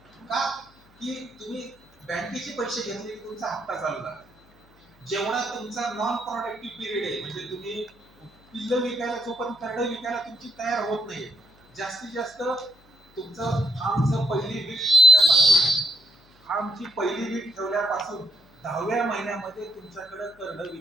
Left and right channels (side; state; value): left; noise; hum, 29 dB below the sound